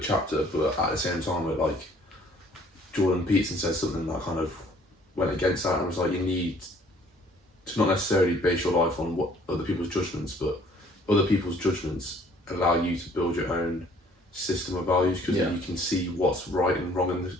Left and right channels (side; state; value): both; normal; correlation 0.58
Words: but at the same time, it, like, Jordan Peterson said something that kind of went against that, and was like, you need to not necessarily base your life on what other people's judgments, but other people's judgments allow you to build your own system of values, because you can see what's right and wrong in